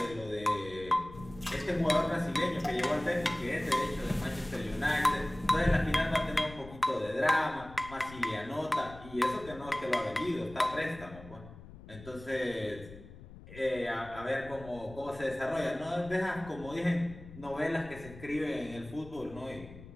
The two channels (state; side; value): noise; left; rumble, 16 dB below the sound